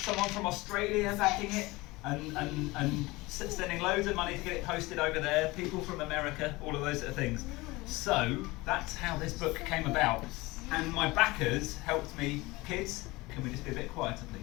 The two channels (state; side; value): quieter; right; 21.7 dB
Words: from Australia backing it. and sending loads of money to get it posted over there. People from America, all of those sort of things. So that's how this book came about. And my backers helped me. Kids, can we just be a bit quieter,